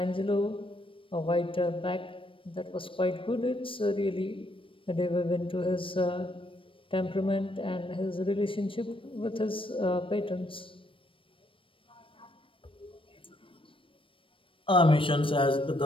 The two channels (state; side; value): late; right; 0.25 ms